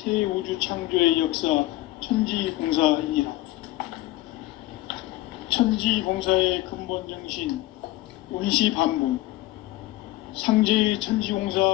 우주 창조의 역사 천지공사이니라. 천지공사의 근본 정신 원시반복, 상제의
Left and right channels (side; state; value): right; quieter; 17.5 dB